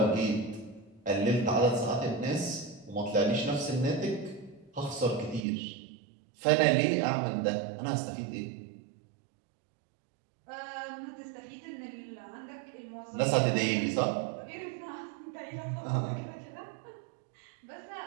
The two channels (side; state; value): left; drops out; at 5.5 s